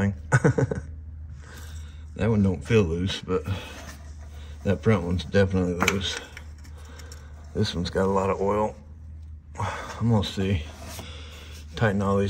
That one don't feel loose, but that front one's definitely loose. This one's got a lot of oil. I'm gonna see. Tighten all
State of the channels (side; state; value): both; identical; correlation 1.00